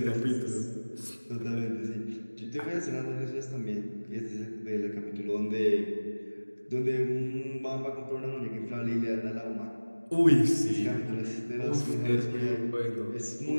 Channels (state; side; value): inverted; both; correlation -1.00